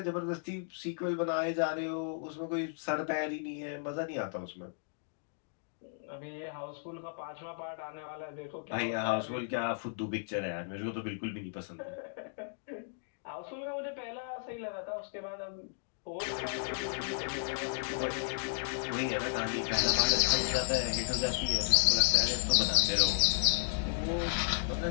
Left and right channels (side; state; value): right; silent; digital silence